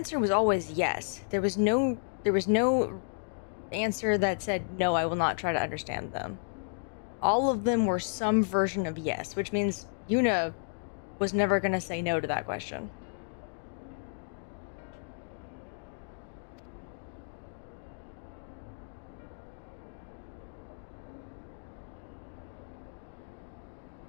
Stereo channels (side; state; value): right; silent; digital silence